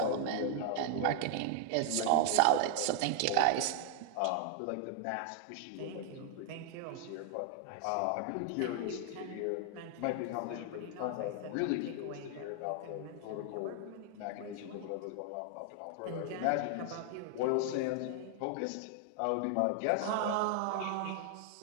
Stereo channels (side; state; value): both; different; correlation 0.00